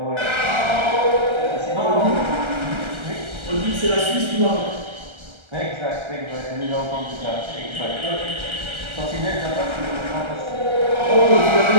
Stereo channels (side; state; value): left; late; 1.3 ms